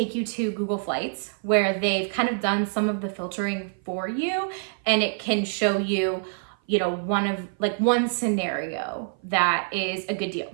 you to Google Flights where they've kind of done some of the filtering for you, and it can show you, one scenario that is a good deal.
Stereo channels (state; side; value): silent; left; 56 dB below the other